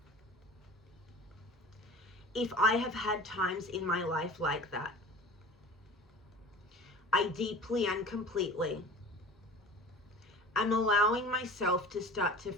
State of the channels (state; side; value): normal; both; correlation 0.39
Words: If I have had times in my life like that, I deeply and completely I'm allowing myself to start to